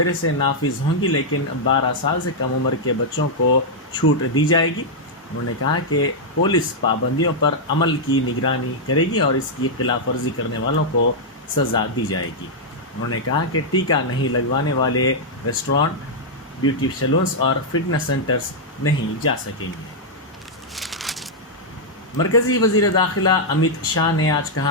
سے نافذ ہوں گی، لیکن 12 سال سے کم عمر کے بچوں کو چھوٹ دی جائے گی۔ انہوں نے کہا کہ پولیس پابندیوں پر عمل کی نگرانی کرے گی اور اس کی خلاف ورزی کرنے والوں کو سزا دی جائے گی۔ انہوں نے کہا کہ ٹیکہ نہیں لگوانے والے ریسٹورانٹ، بیوٹی سیلونز اور فٹنس سینٹرز نہیں جا سکیں گے۔ مرکزی وزیر داخلہ امت شاہ نے آج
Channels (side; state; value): both; normal; correlation -0.05